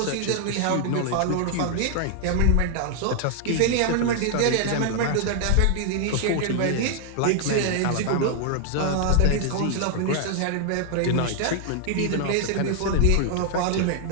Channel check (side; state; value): both; different; correlation 0.00